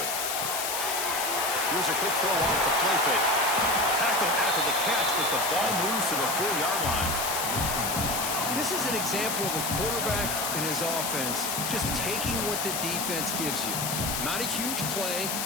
Here's a quick throw off the play fake. Tackle after the catch, but the ball moves to the 4-yard line. This is an example of a quarterback and his offense just taking what the defense gives you. Not a huge play,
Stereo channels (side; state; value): left; noise; hiss, 1 dB below the sound